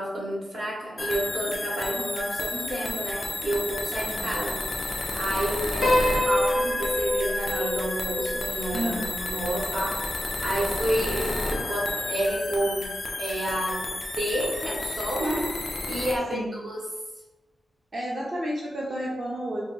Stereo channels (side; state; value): both; normal; correlation 0.90